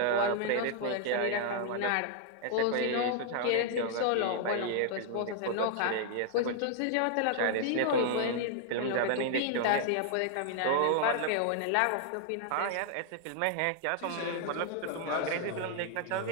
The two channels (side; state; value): both; different; correlation -0.01